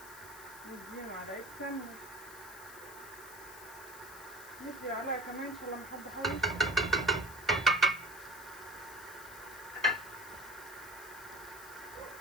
نديها معلقه سمنه، ندي عليها كمان عشان لما حد يحوش.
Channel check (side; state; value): left; noise; hiss, 16 dB below the sound